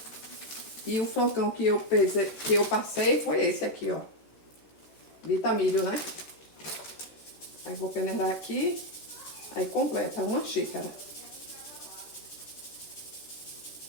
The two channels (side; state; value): right; late; 13 ms